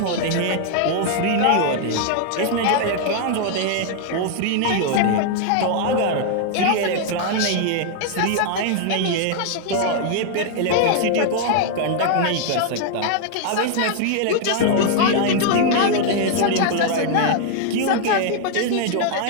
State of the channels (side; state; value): both; different; correlation 0.00